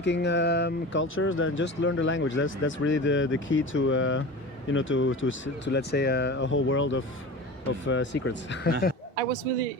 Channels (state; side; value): normal; both; correlation 0.33